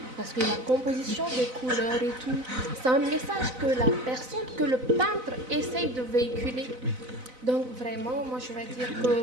Parce que la composition des couleurs et tout, c'est un message que le peintre essaye de véhiculer. Donc vraiment, moi je vais dire que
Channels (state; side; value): late; left; 4.0 ms